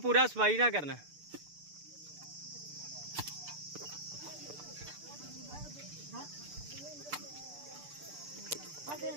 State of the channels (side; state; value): left; late; 6.8 ms